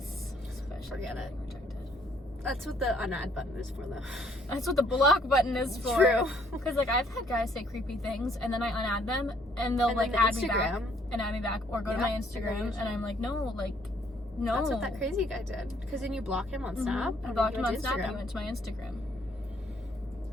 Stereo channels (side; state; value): both; normal; correlation 0.65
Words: Especially Forget it. getting rejected. That's what the unadd button is for, though. That's what the block button is for. True. Because like I've had guys say creepy things and then I unadd them and they'll And like then the add me back Instagram. and add me back or go to Yeah, my they go to Instagram your and I'm like no. That's what that crazy guy did. Because then you block him on Snap. I and blocked then him you on went to Snap and he Instagram. went to my Instagram.